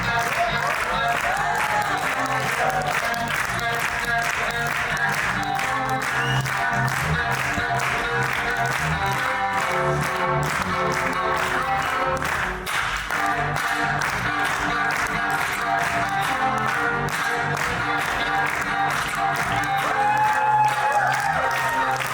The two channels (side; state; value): both; identical; correlation 1.00